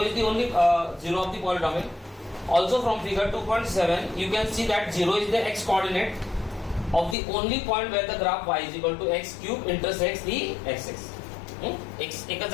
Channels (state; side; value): drops out; right; at 7.2 s